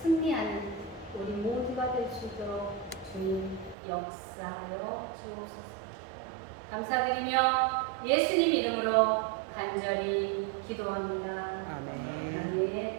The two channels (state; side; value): drops out; left; at 3.8 s